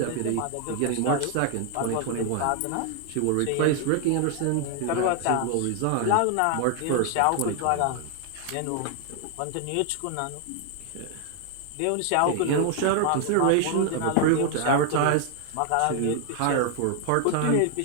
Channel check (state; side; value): different; both; correlation 0.00